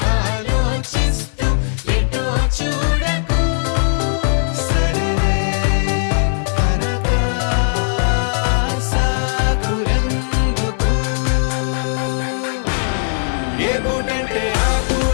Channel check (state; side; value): silent; right; 61 dB below the other